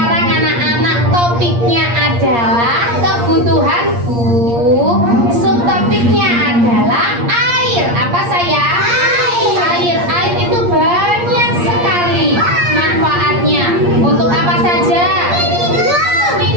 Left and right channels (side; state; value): left; late; 8.5 ms